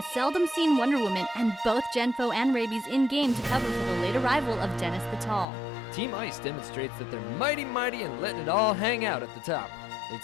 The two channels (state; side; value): drops out; right; at 5.5 s